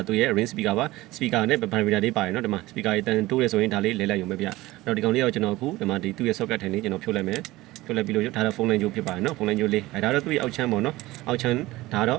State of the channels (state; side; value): quieter; left; 18.6 dB